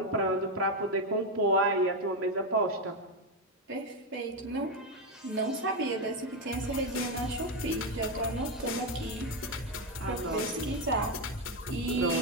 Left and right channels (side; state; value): both; normal; correlation 0.07